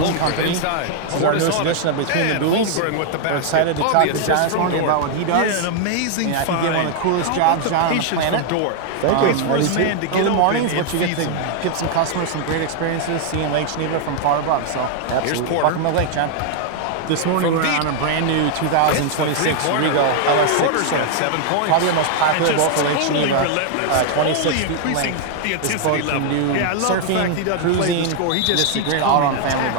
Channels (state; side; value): different; both; correlation 0.00